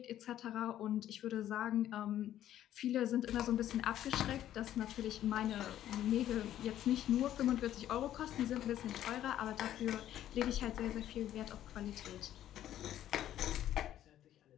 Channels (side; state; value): right; quieter; 12.0 dB